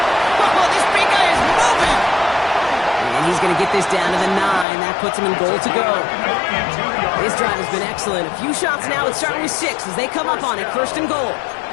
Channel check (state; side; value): drops out; right; at 4.7 s